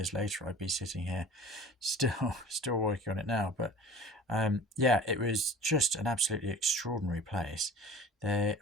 later, I'd be sitting here still working on it now? But yeah, it was just an absolutely extraordinary place.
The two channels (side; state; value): both; normal; correlation 0.42